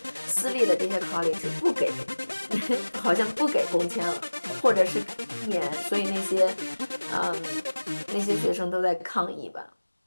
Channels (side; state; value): both; inverted; correlation -1.00